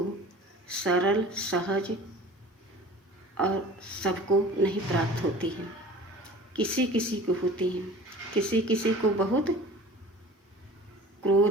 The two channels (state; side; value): normal; both; correlation 0.42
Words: सरल, सहज और सबको नहीं प्राप्त होती है, किसी किसी को होती है, किसी किसी को बहुत